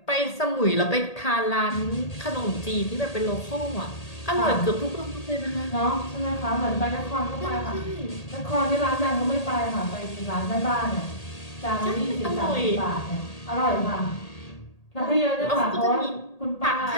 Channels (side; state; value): right; late; 1.8 ms